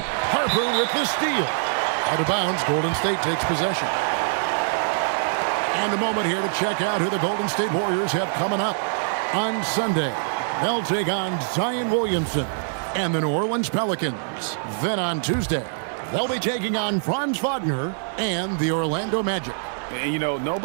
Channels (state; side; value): silent; left; digital silence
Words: Harper with the steal. Out of bounds, Golden State takes possession. And a moment here to check out who the Golden State Warriors have coming up. On Sunday, they'll take on Zion Williamson and the New Orleans Pelicans. Then on Tuesday, they'll be taking on Franz Wagner and the Orlando Magic. And, you know,